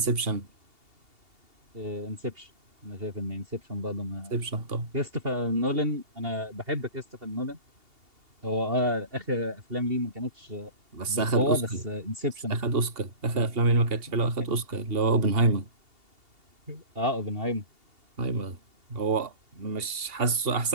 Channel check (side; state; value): left; late; 2.8 ms